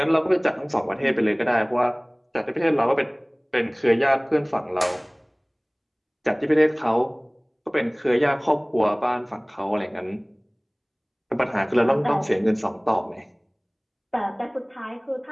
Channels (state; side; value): identical; both; correlation 1.00